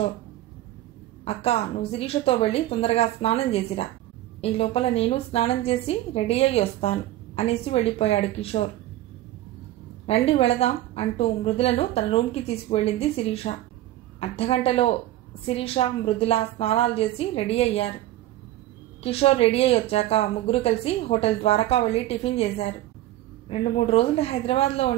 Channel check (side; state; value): left; quieter; 14.8 dB